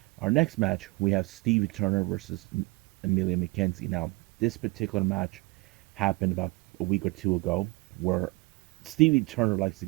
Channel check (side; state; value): left; quieter; 24.9 dB